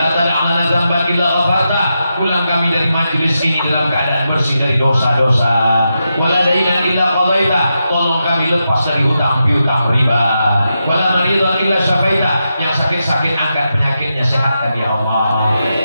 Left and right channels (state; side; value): inverted; both; correlation -0.87